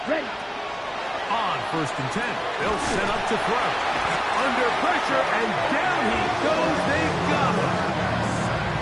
Ready. On first and 10. They'll set up to throw. Under pressure, and down he goes. They got him.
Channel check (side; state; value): both; identical; correlation 1.00